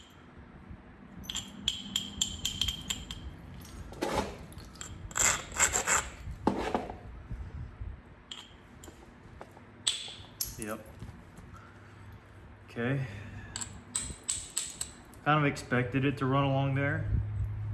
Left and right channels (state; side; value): identical; both; correlation 1.00